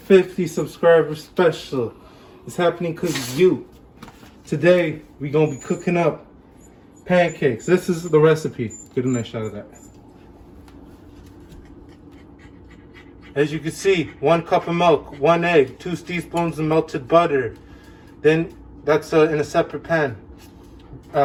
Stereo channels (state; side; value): identical; both; correlation 1.00